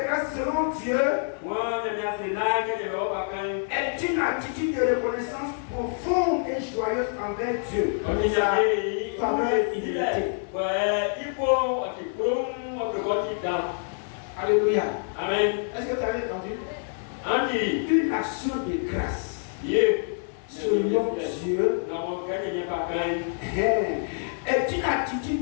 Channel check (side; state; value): right; silent; 59 dB below the other